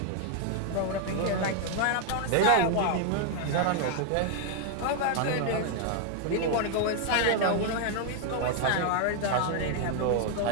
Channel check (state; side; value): different; both; correlation 0.00